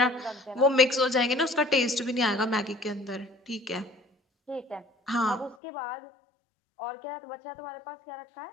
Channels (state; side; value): drops out; right; at 5.6 s